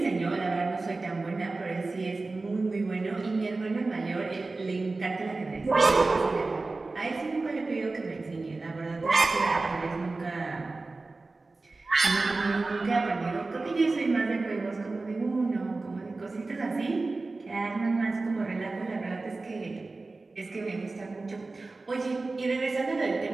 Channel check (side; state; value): left; quieter; 3.5 dB